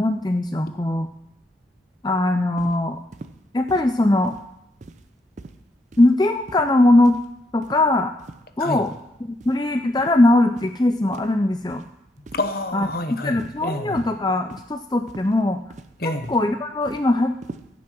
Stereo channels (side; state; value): both; normal; correlation 0.77